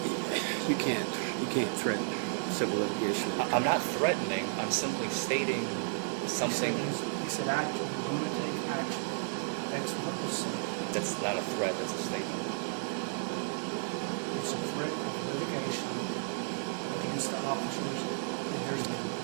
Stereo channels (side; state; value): left; silent; digital silence